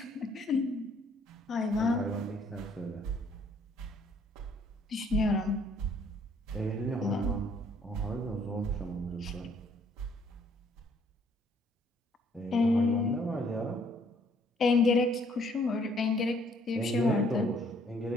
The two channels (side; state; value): both; normal; correlation 0.64